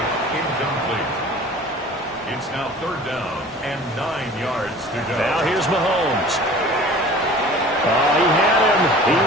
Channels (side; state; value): both; normal; correlation 0.44